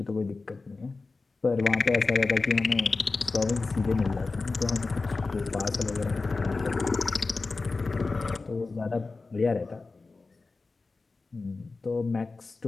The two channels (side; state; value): right; quieter; 3.9 dB